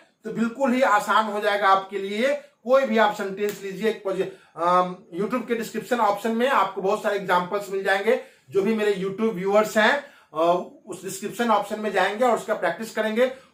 तो बिल्कुल ही आसान हो जाएगा आपके लिए। कोई भी आप सेंटेंस लीजिए, यूट्यूब के डिस्क्रिप्शन ऑप्शन में आपको बहुत सारे एग्जांपल्स मिल जाएंगे। जो भी मेरे यूट्यूब व्यूअर्स हैं उस डिस्क्रिप्शन ऑप्शन में जाएंगे और उसका प्रैक्टिस करेंगे।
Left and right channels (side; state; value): both; identical; correlation 1.00